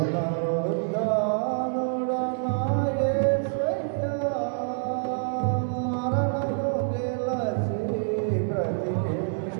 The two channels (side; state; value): left; silent; 60 dB below the other